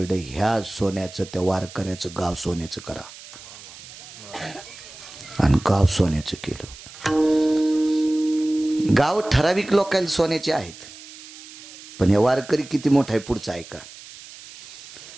ह्या सोन्याचं त्या वारकऱ्याचं गाव सोन्याचं करा. आणि गाव सोन्याचं केलं. गाव ठराविक लोकांना सोन्याचे आहेत, पण हे वारकरी किती मोठा आहे पुढचा ऐका.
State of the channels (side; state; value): right; noise; hiss, 17 dB below the sound